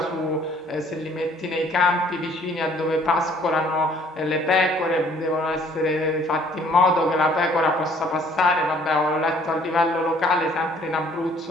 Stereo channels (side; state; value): both; normal; correlation 0.59